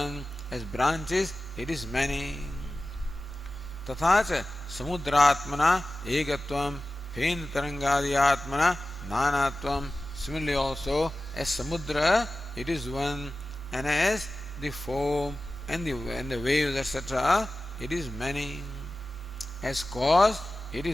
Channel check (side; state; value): both; normal; correlation 0.95